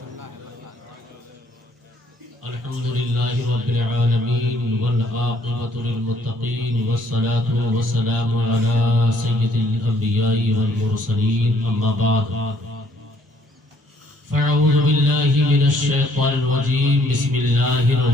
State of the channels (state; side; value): normal; both; correlation 0.65